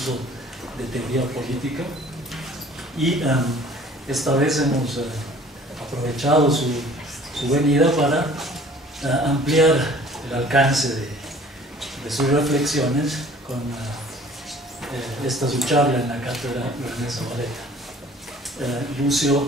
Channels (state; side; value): normal; both; correlation 0.51